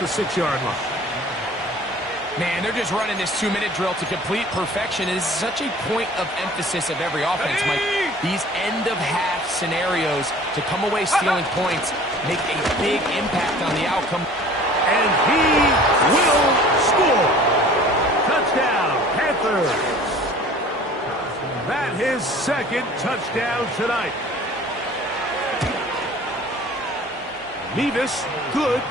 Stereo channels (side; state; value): both; normal; correlation 0.47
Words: 6-yard line. Man, they're just running this 2-minute drill to complete perfection. It is such a point of emphasis of every offense, Mike. These end-of-half scenarios to come away stealing points make a big impact on the outcome. And he will score. Touchdown, Panthers. That his 2nd touchdown tonight. Nevis good